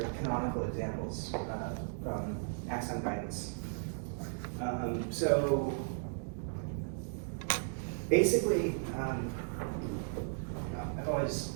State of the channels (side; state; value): left; silent; digital silence